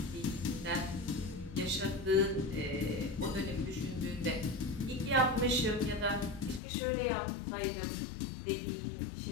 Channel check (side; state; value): right; drops out; at 6.6 s